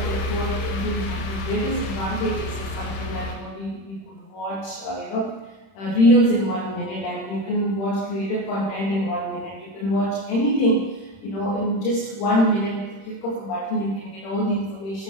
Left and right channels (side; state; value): right; late; 31 ms